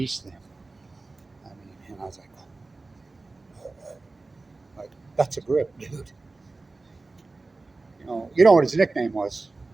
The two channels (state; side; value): quieter; left; 3.4 dB